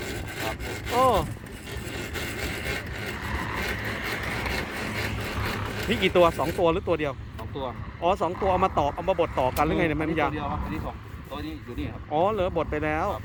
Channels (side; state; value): both; identical; correlation 1.00